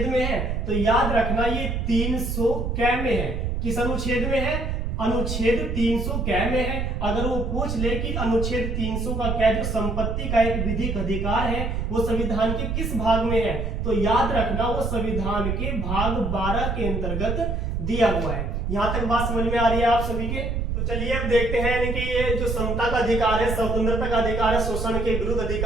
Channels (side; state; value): right; noise; rumble, 1 dB below the sound